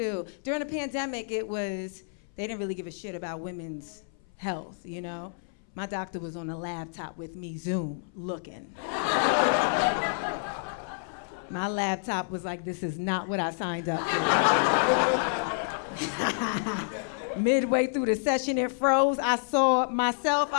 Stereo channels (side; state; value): right; silent; 59 dB below the other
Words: During the pandemic, they didn't really give a shit about women's health, you know? My doctor was on a laptop with me, Zoom, looking. My laptop was like, this is not what I signed up for. Midway through the session, it froze. I saw myself.